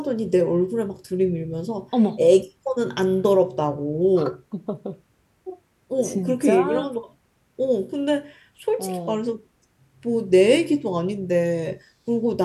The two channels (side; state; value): both; identical; correlation 1.00